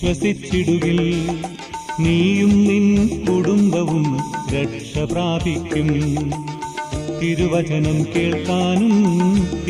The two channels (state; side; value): identical; both; correlation 1.00